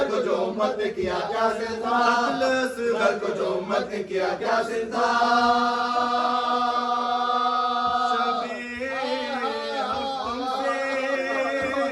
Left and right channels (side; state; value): both; identical; correlation 1.00